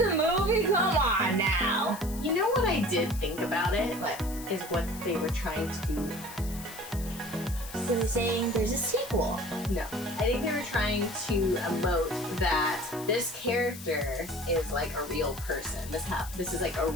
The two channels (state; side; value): noise; left; hiss, 14 dB below the sound